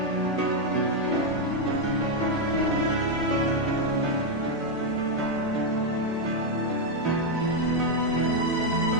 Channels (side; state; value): both; normal; correlation 0.01